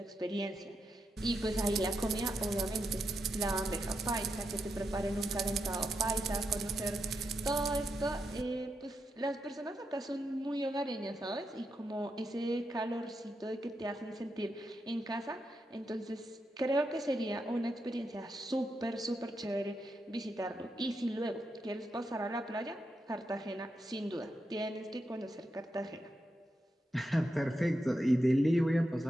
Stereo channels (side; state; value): both; normal; correlation 0.84